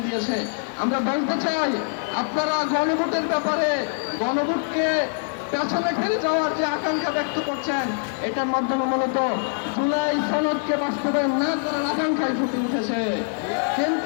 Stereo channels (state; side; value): silent; right; 60 dB below the other